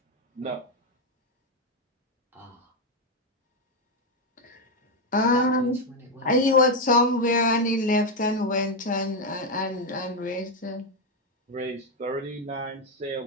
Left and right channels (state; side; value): normal; both; correlation 0.06